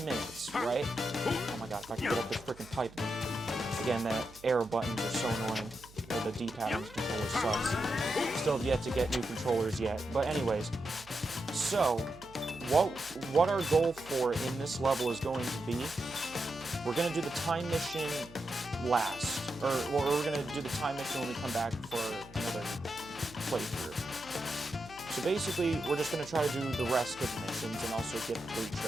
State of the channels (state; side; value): noise; right; hum, 22 dB below the sound